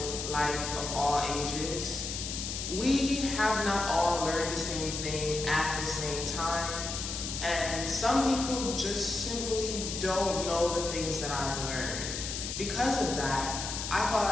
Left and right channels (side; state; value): left; noise; hiss, 5 dB below the sound